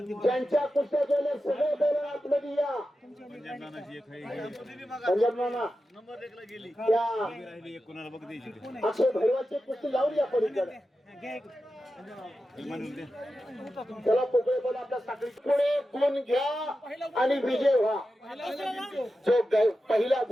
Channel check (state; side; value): normal; both; correlation 0.91